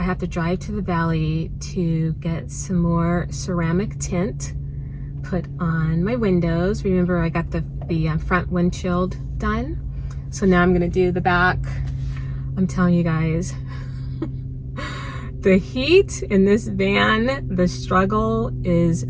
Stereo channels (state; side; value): identical; both; correlation 1.00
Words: have to drive to the valley to get some more ceramic tint put on my windows. Remember, I got the front windshield done, so now I'm going to do the back. I'm telling you guys, the heat in this van, the struggle is